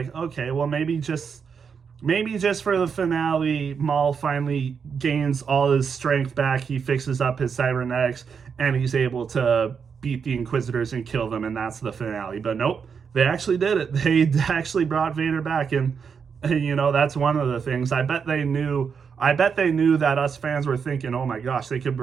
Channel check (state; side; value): quieter; left; 6.3 dB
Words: okay, well, maybe just for the finale, Maul finally gains all his strength back. He fixes up his cybernetics, and he's able to beat the Inquisitors and kill them, and that's the finale. But nope, they actually did it. They actually brought Vader back, and that's one of the things. I bet they knew that us fans were thinking, oh my gosh, they could